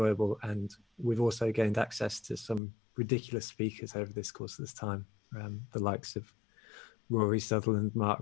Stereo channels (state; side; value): drops out; right; at 2.6 s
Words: And we've also gained access to some ridiculous speakers over this course of this time, the likes of Rory Sutherland, Mark